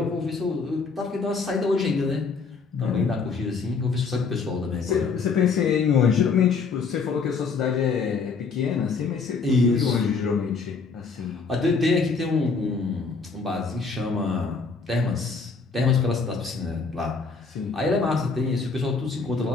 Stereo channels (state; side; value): quieter; right; 4.8 dB